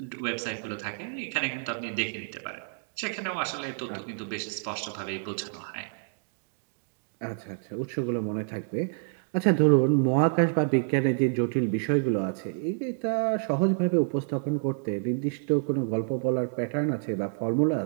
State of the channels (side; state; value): left; silent; digital silence